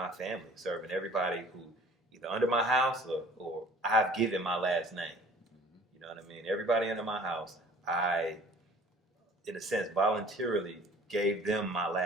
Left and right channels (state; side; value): normal; both; correlation 0.50